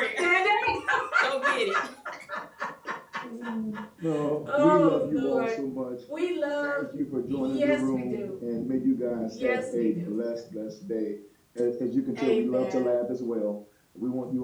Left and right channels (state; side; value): identical; both; correlation 1.00